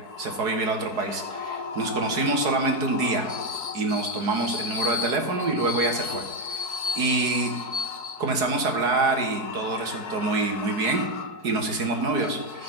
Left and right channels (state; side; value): late; left; 4.8 ms